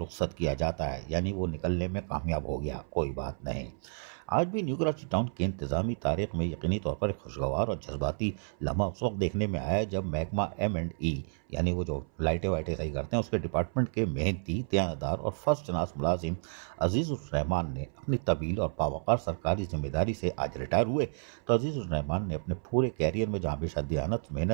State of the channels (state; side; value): silent; left; 57 dB below the other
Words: किया जाता है, यानी वो निकलने में कामयाब हो गया, कोई बात नहीं। आज भी न्यू कराची टाउन की इंतज़ामी तारीख में यकीनी तौर पर एक खुशगवार और जज्बाती लम्हा उस वक्त देखने में आया जब महकमा M&E यानी वो जो लाइटें वाइटें सही करते हैं उसके डिपार्टमेंट के मेहनती, दयानतदार और फर्स्ट क्लास मुलाजिम अजीज़ुर्रहमान ने अपनी तवील और बावकार सरकारी जिम्मेदारी से आज रिटायर हुए। तो अजीज़ुर्रहमान ने अपने पूरे कैरियर में जहाँ हमेशा दयानत,